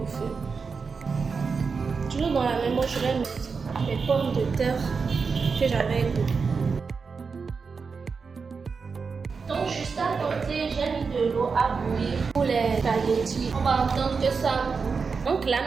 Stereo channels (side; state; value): left; quieter; 5.1 dB